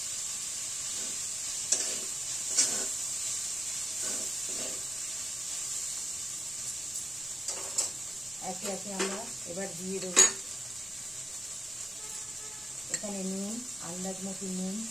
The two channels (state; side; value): normal; both; correlation 0.91